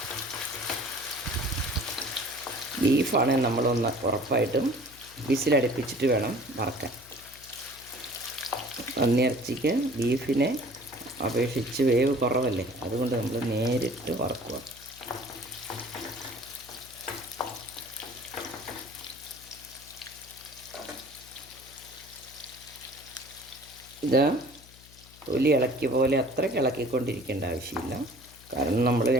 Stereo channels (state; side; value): noise; left; hum, 22 dB below the sound